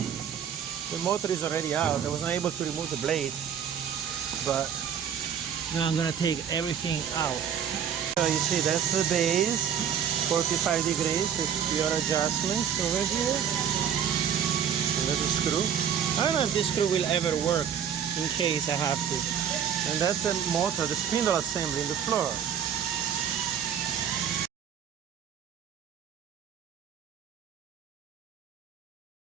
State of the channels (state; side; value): quieter; left; 8.3 dB